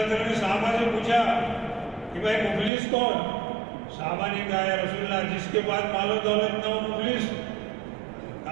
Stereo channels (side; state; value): left; drops out; at 2.7 s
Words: وسلم نے صحابہ سے پوچھا کہ بھائی مفلس کون؟ صحابہ نے کہا یا رسول اللہ جس کے بعد مال و دولت نہ ہو مفلس؟